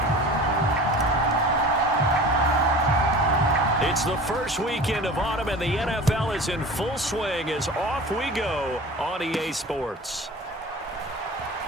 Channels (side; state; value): both; normal; correlation 0.38